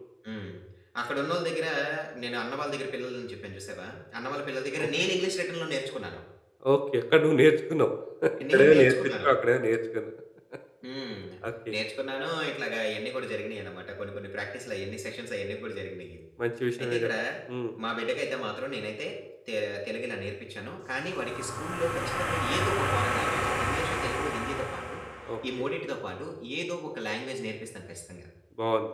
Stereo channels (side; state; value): both; identical; correlation 1.00